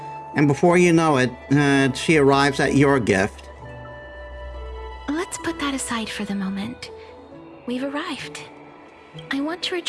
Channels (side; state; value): both; identical; correlation 1.00